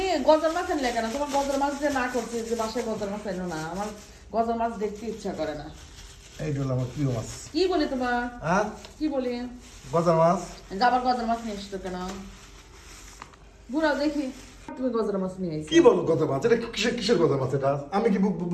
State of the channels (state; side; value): identical; both; correlation 1.00